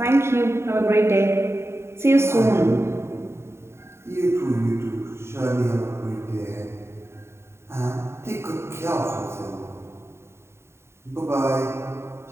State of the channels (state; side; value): late; left; 0.13 ms